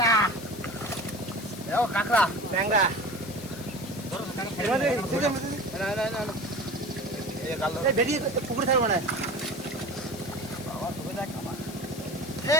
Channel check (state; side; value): noise; left; hiss, 15 dB below the sound